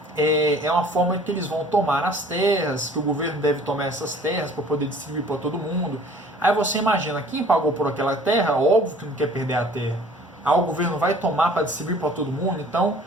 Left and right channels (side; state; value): both; normal; correlation 0.51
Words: É uma forma que eles vão tomar as terras, que o governo deve tomar essas terras para poder distribuir para todo mundo. Aí você imagina, quem pagou por aquela terra, óbvio que não quer perder a terra. Aí o governo vai tomar para distribuir para todo mundo, então